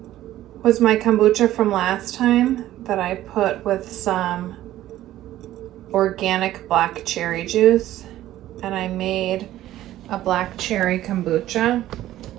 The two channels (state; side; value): quieter; left; 14.0 dB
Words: was my kombucha from last time that I put with some organic black cherry juice, and I made a black cherry kombucha,